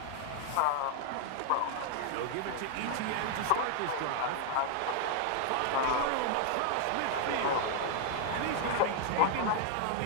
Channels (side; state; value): both; different; correlation 0.00